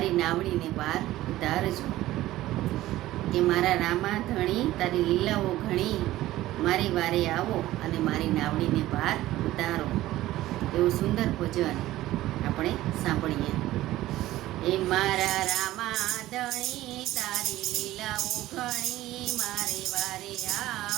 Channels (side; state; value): left; quieter; 15.7 dB